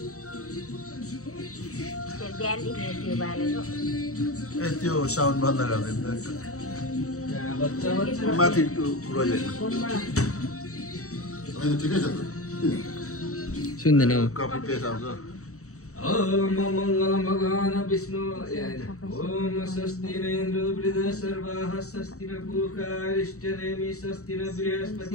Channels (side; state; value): right; late; 0.65 ms